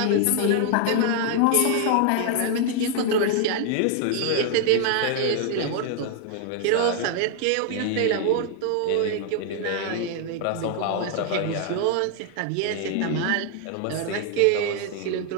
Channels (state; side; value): different; both; correlation 0.00